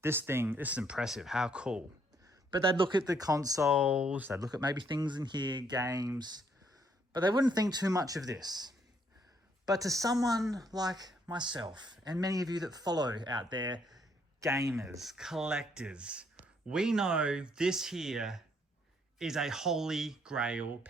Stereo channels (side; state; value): both; normal; correlation 0.70